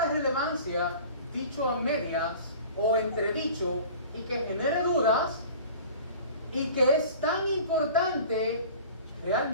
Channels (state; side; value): inverted; both; correlation -0.43